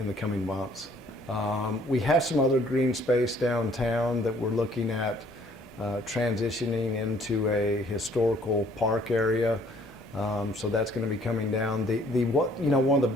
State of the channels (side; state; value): both; normal; correlation 0.60